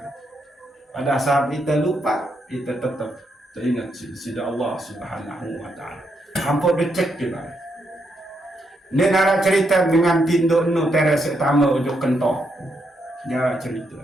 Pada saat kita lupa, kita tetap teringat sida Allah Subhanahu wa ta'ala. Hampir dicek juga. Ini nara cerita dengan tindu nu teres etama ujuk kentok. Nara cerita.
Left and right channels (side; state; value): both; normal; correlation 0.79